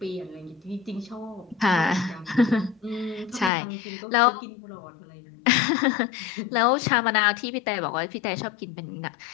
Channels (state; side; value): drops out; right; at 3.5 s